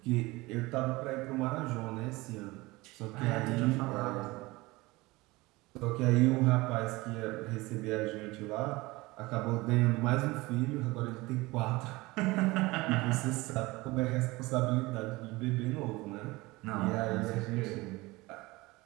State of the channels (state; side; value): quieter; left; 21.6 dB